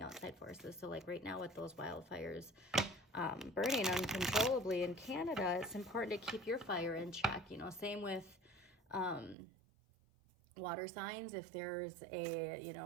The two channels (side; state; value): left; drops out; at 9.3 s